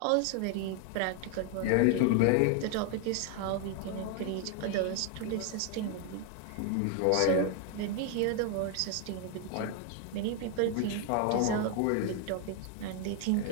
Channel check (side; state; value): both; different; correlation 0.01